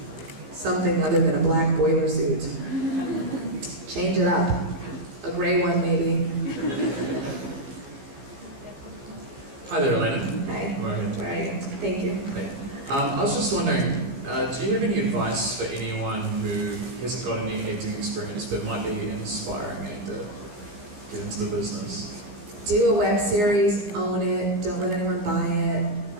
something other than a black boiler suit. Change it up. A gray one, maybe. Hi there, Elena. Hi. Go ahead. All right. Thank you. Hey. I was just wondering, do you have any advice for anyone who hasn't got any acting experience but might be an aspiring actor, get into the business? Do a web series, own it, don't let anyone buy it.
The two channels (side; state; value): left; late; 14 ms